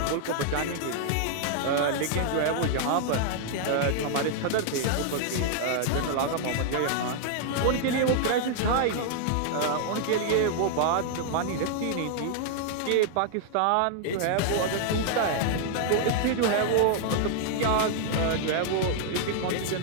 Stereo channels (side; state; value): both; different; correlation -0.01